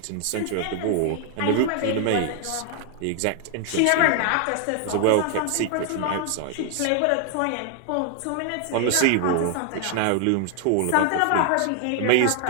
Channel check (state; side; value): different; both; correlation 0.00